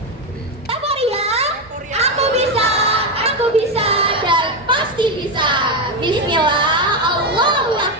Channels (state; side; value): normal; both; correlation 0.09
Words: Aku bisa dan pasti bisa. Bismillah, Allahu